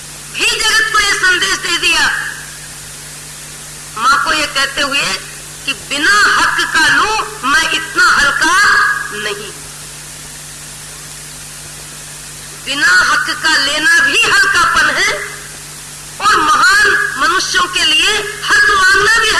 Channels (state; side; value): identical; both; correlation 1.00